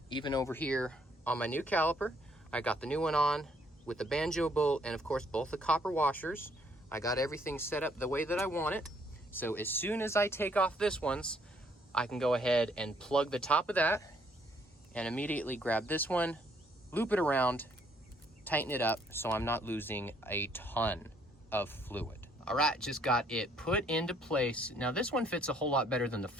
Even over here on my new caliper, I got the new one on with the banjo bolt and of course both the copper washers. I got everything set up the way that I want it. So as soon as I take off this one's, I can go ahead and plug the top of that and immediately grab this one, loop it around, tighten it up so I'm not losing a ton of fluid. All right, just got it put into place. Now this one fits a whole lot better than the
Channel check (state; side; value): normal; both; correlation 0.66